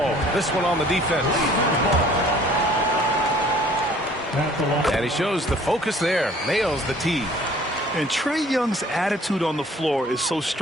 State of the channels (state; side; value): normal; both; correlation 0.54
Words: This one on the defense. And he shows the focus there. Nails the tee. And Trae Young's attitude on the floor is so